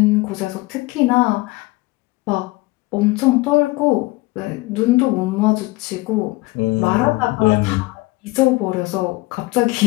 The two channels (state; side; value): quieter; right; 22.0 dB